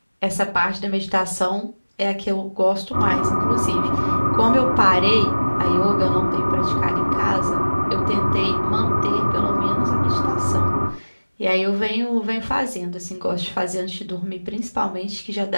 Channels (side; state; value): both; inverted; correlation -1.00